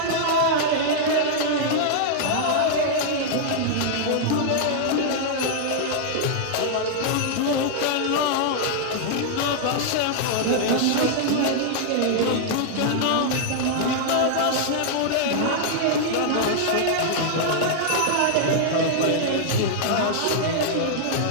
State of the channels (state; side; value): different; both; correlation -0.01